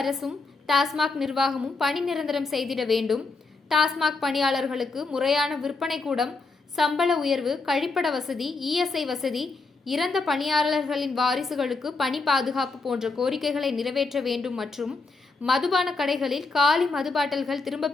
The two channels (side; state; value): right; quieter; 3.9 dB